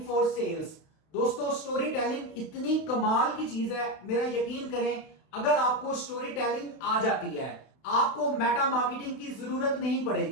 for sales. दोस्तों, स्टोरी टेलिंग इतनी कमाल की चीज है, मेरा यकीन करें, अगर आपको स्टोरी टेलिंग आ जाती है, आपको मेटा मार्केटिंग की जरूरत नहीं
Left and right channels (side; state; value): right; late; 32 ms